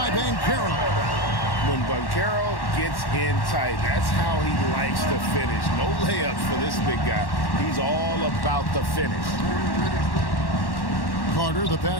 Banchero. When Banchero gets in tight, that's how he likes to finish. No layups for this big guy. He's all about the finish. Carter, the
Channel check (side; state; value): right; late; 1.1 ms